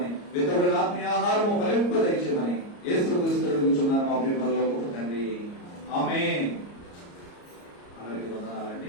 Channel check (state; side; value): late; right; 34 ms